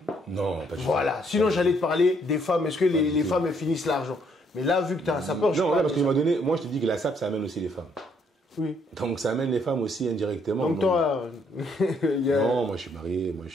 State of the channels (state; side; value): normal; both; correlation 0.69